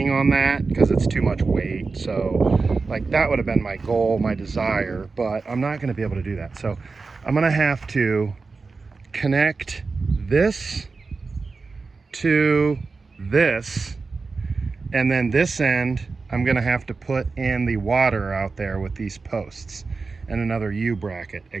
on that because it's too much weight. So like that would have been my goal, my desire, but I'm not going to be able to do that. So I'm going to have to connect this to this, and then this end I'm going to have to put in the water out there with these posts and another U bracket,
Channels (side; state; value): left; quieter; 4.2 dB